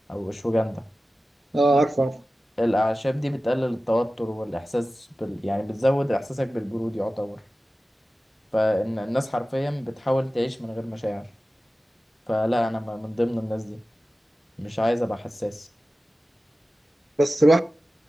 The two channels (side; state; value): both; normal; correlation 0.95